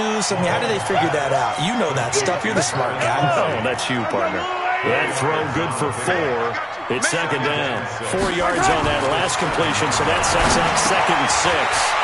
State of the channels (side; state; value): both; identical; correlation 1.00